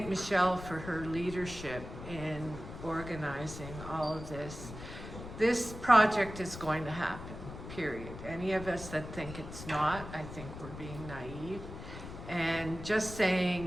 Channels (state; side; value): noise; left; rumble, 11 dB below the sound